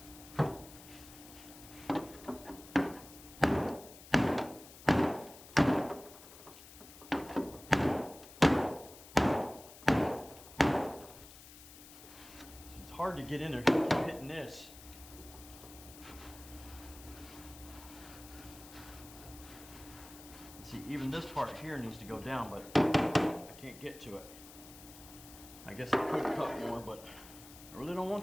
It's hard to get in there. Keep hitting this. See, even this part here needs to go down, but I can't get to it. I guess I could cut more, but I really don't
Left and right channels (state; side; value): noise; left; hiss, 18 dB below the sound